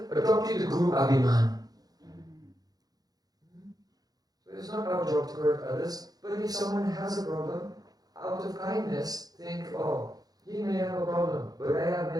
the guru abhiman. So it's not our job to correct others, but if someone has a problem, out of kindness, think, oh, he may have a problem, but I have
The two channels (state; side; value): late; left; 0.19 ms